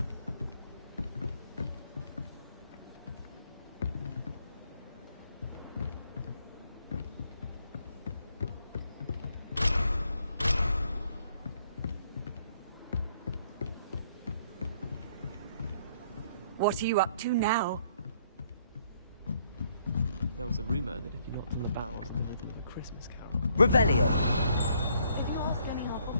What are you up to now? There was a rumor that if you knocked on the barrels in the rhythm of a Christmas carol... Revelio.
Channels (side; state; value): both; inverted; correlation -0.67